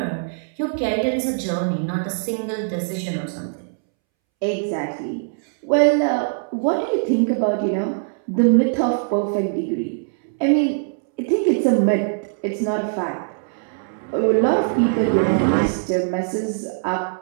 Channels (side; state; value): left; silent; 64 dB below the other